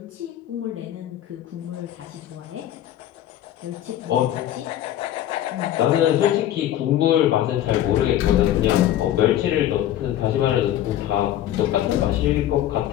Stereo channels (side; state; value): right; quieter; 12.3 dB